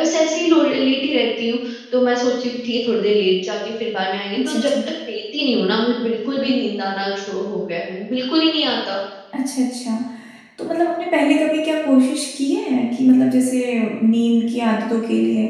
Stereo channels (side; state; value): both; identical; correlation 1.00